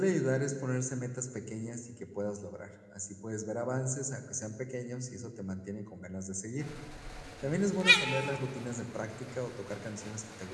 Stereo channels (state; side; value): identical; both; correlation 1.00